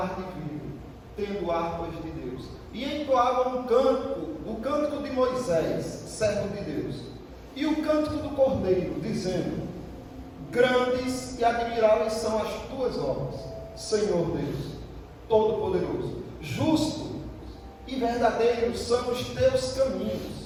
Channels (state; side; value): identical; both; correlation 1.00